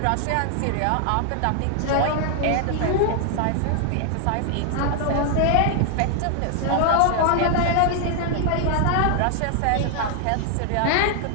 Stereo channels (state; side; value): different; both; correlation 0.00